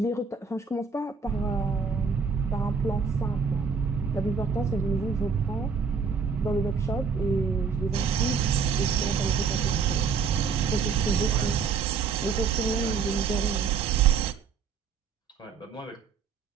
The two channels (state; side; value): quieter; left; 5.7 dB